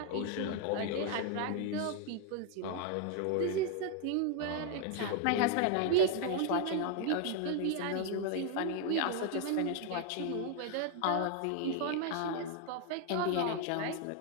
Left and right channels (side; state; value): both; different; correlation 0.00